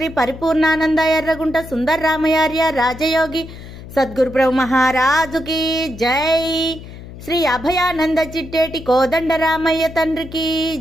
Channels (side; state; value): left; noise; hum, 15 dB below the sound